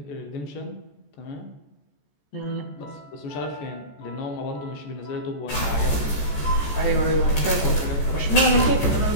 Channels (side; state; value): right; late; 14 ms